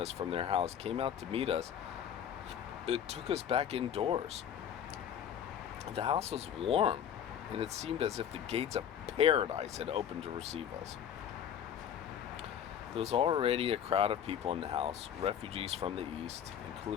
from their house came out to meet us. It took us back indoors. The house was warm, and it seemed as if the gates of paradise had opened to receive us. There was already a crowd of people in the house, refugees from the east,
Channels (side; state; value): right; quieter; 9.1 dB